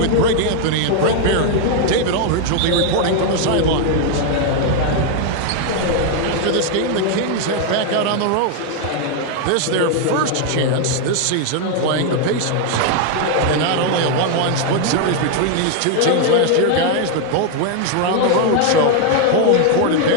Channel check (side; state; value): both; different; correlation 0.00